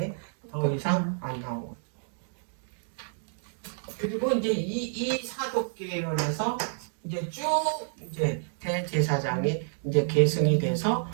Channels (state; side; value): silent; left; digital silence